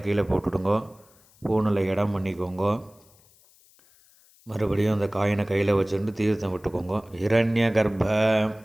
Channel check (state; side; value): noise; left; hiss, 30 dB below the sound